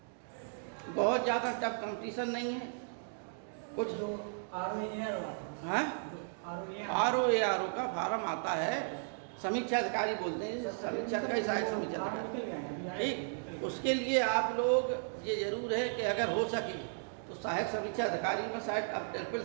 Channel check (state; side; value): silent; left; digital silence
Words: बहुत ज़्यादा टफ कंपटीशन नहीं है, कुछ आरओ का फॉर्म आता है, समीक्षा अधिकारी बोलते हैं, समीक्षा अधिकारी सहायक समीक्षा अधिकारी, ठीक। उसके लिए आप लोग ये जरूर है कि अगर हो सके तो सहायक समीक्षा अधिकारी में शायद अब